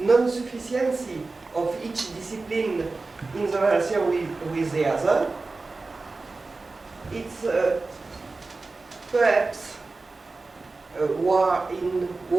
of each discipline in the relation with the other? It's perhaps war in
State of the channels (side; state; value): left; quieter; 3.6 dB